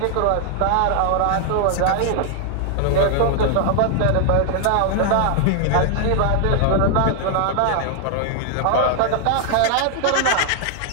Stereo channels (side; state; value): both; different; correlation 0.00